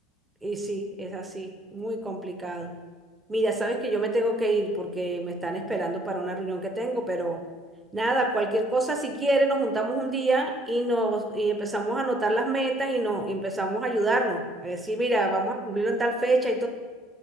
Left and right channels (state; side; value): normal; both; correlation 0.65